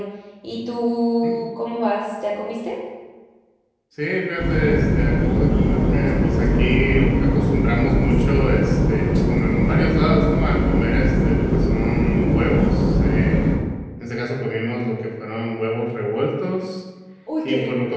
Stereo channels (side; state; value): both; identical; correlation 1.00